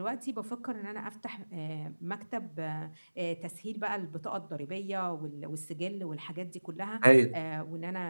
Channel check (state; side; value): inverted; both; correlation -1.00